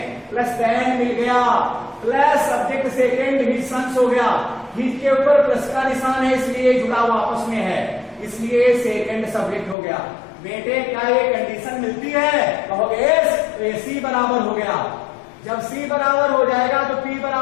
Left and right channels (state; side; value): drops out; right; at 9.8 s